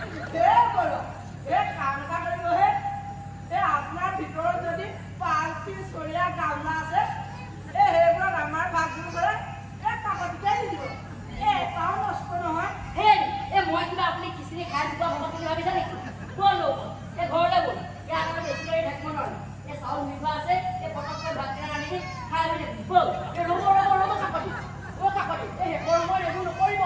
এই কাম এটা চাউল নিভা আছে এই পটককে ভাত কেনে আনি খাই হৈ বল এই ৰব কাকতি এই হেকৰ মই এইবোৰ নকৰিব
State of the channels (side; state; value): both; identical; correlation 1.00